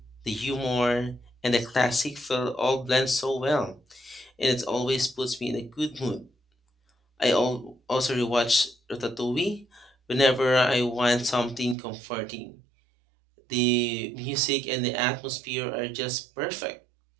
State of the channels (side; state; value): left; drops out; at 11.8 s